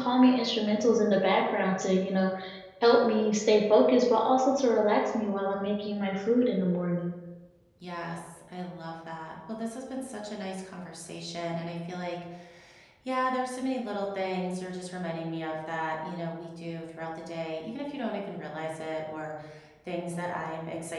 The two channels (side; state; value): both; identical; correlation 1.00